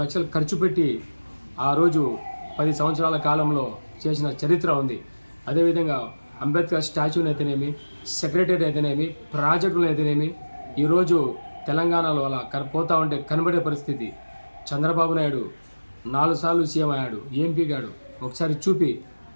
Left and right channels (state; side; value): inverted; both; correlation -1.00